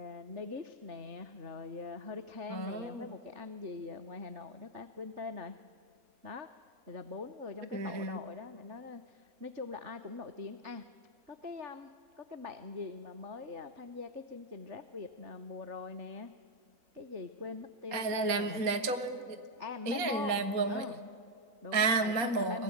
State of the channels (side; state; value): left; late; 4.2 ms